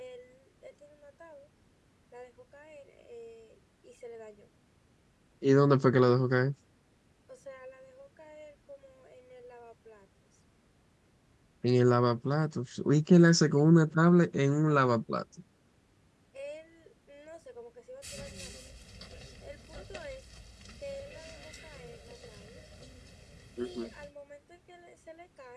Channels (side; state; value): both; identical; correlation 1.00